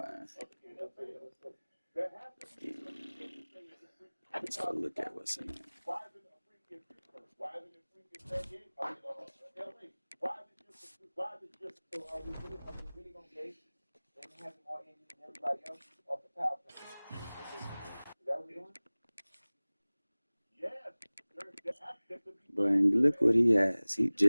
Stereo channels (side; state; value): both; inverted; correlation -1.00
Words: of the NFL. That happens. let's go look at what's in there. Why isn't a freak in Pittsburgh? Why isn't it a freak in San Diego? LA? Why is it just so are we really gonna base them having more injuries than everybody else off the power plant? Is that what we're doing? yes? But look what he has. He